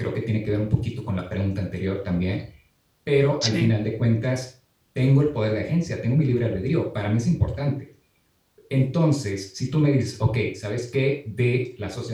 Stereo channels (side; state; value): both; identical; correlation 1.00